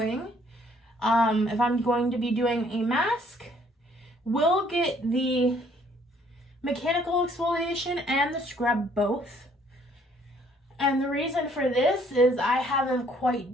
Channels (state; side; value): normal; both; correlation 0.62